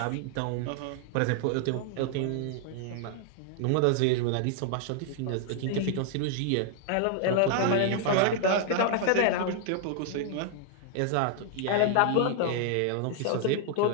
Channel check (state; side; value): different; both; correlation 0.00